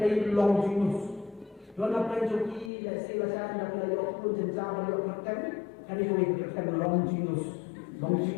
long jinus. Dona penjoki ya silasan dan layak pun jenjang layak kerjaan. Kali ini kerjaan long jinus. Long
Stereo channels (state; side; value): drops out; right; at 2.7 s